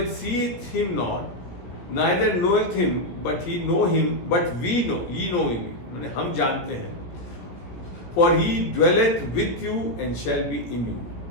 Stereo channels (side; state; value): right; late; 17 ms